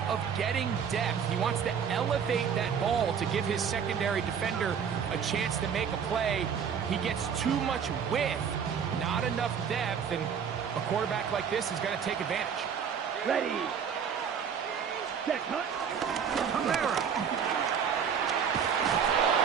of getting depth. He wants to elevate that ball to give his secondary defender a chance to make a play. He gets too much width, not enough depth, and a quarterback like this is going to take advantage. Ready. Set, cut. Kamara.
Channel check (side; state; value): left; quieter; 7.2 dB